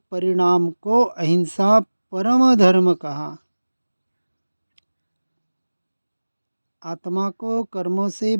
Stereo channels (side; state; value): both; inverted; correlation -1.00